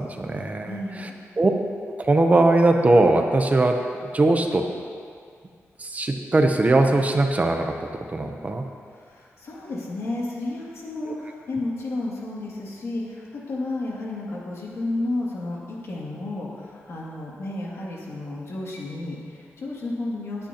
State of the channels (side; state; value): both; normal; correlation 0.90